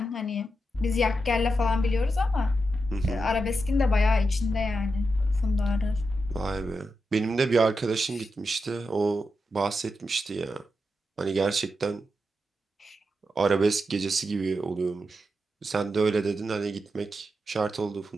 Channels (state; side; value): normal; both; correlation 0.87